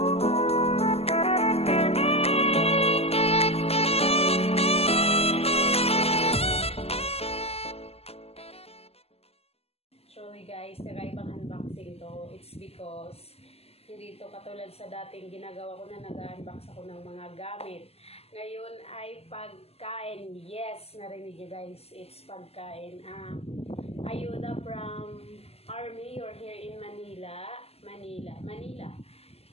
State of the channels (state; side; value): late; right; 0.29 ms